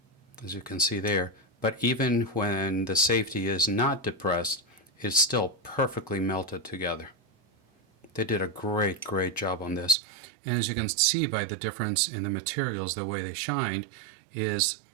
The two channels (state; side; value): drops out; left; at 10.0 s